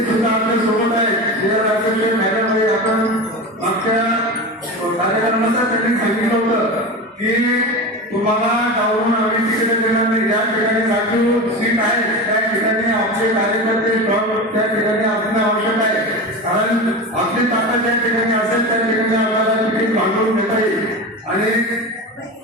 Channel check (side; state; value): both; normal; correlation 0.26